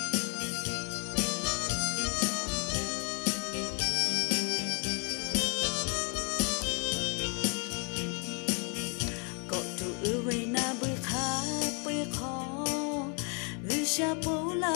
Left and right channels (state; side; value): quieter; right; 37.1 dB